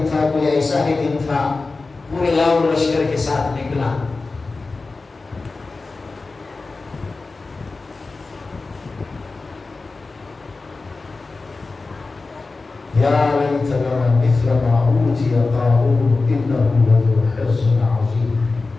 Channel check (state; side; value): quieter; right; 3.8 dB